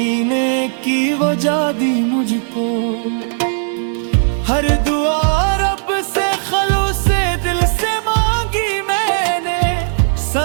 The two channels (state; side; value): silent; left; digital silence